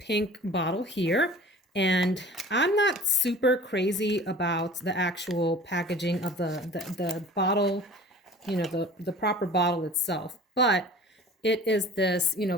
bottle here. And I'm not super crazy about the actual packaging of the bottle, the proper bottle itself. But it is this,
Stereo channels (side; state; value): both; normal; correlation 0.44